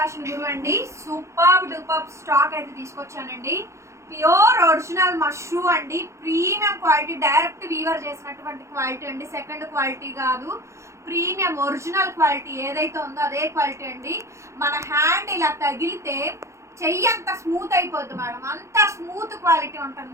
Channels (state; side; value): late; left; 0.14 ms